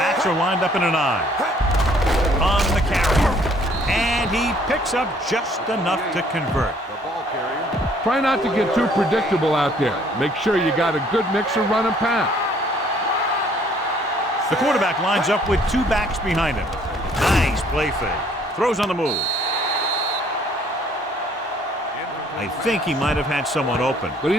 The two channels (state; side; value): normal; both; correlation 0.61